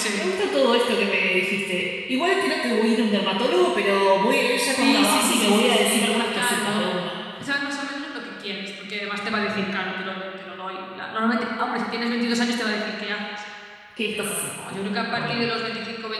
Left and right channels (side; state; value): both; identical; correlation 1.00